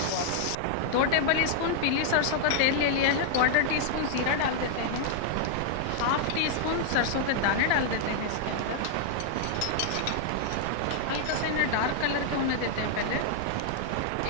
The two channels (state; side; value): different; both; correlation 0.00